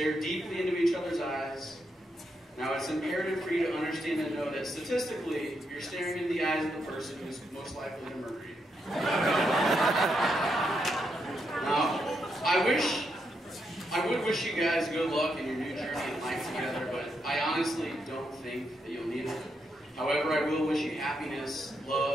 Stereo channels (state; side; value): normal; both; correlation 0.81